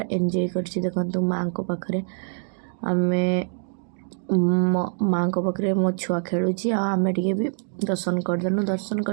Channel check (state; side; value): silent; left; digital silence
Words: ଏନ୍ଜୟ କରିଛି। ଦେଖନ୍ତୁ ମାଆଙ୍କ ପାଖରେ ଆମେ ମାଆଙ୍କ ପାଖରେ ମୋ ଛୁଆ ଖେଳୁଛି ଆଉ ଆମେ ଟିକେ ବି ଦର୍ଶନ କରିଦେଲୁ। ଦର୍ଶନ